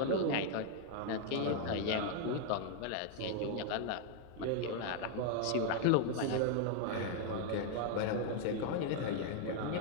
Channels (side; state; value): both; different; correlation 0.00